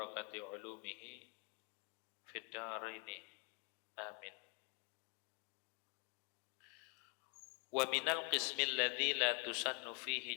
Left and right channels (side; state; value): right; quieter; 35.9 dB